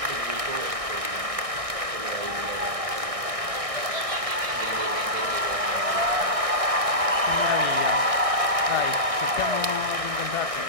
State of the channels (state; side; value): late; left; 1.6 ms